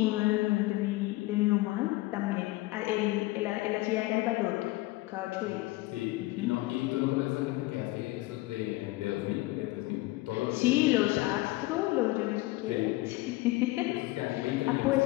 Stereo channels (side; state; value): right; quieter; 20.1 dB